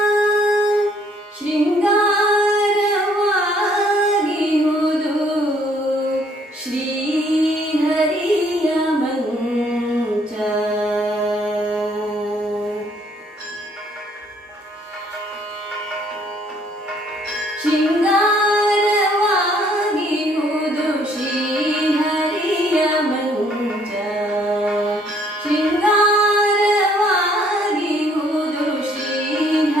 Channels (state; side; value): normal; both; correlation 0.64